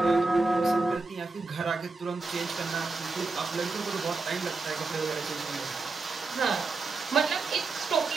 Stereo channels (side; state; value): left; quieter; 3.8 dB